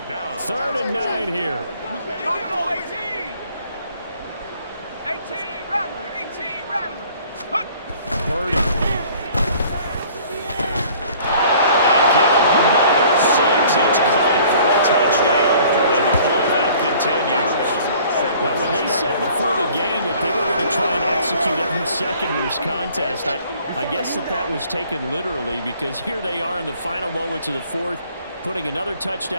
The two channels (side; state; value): both; inverted; correlation -0.54